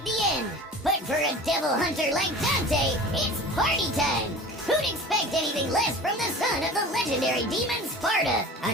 the end, but for a devil hunter like Dante, it's party time. Who'd expect anything less from the son of the legendary demon Sparta?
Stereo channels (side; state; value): both; normal; correlation 0.38